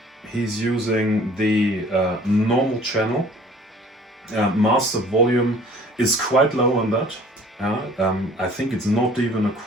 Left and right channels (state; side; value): normal; both; correlation 0.51